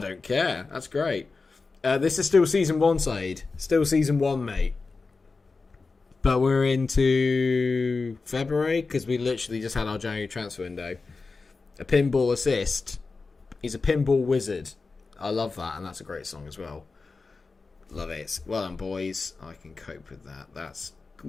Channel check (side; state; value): right; quieter; 4.1 dB